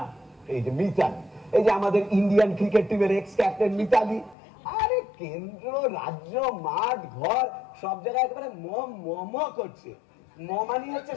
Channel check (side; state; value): right; drops out; at 4.4 s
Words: এই যে মিতালি, এই যে আমাদের ইন্ডিয়ান ক্রিকেট টিমের এক্স ক্যাপ্টেন মিতালি। আরে কেন্দ্র, রাজ্য, মাঠ, ঘর সব জায়গায় একেবারে মম করছে। মমানি হচ্ছে